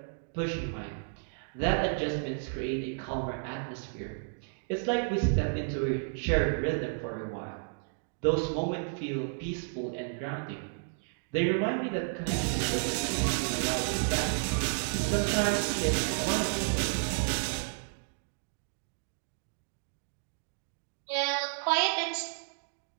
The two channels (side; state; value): left; silent; digital silence